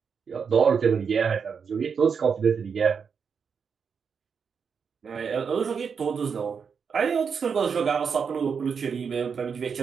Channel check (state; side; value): quieter; left; 6.3 dB